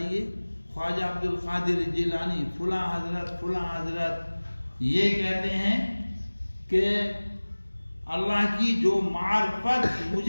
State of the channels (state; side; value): inverted; both; correlation -1.00